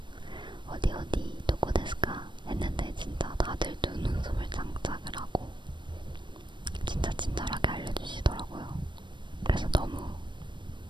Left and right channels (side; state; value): left; late; 0.22 ms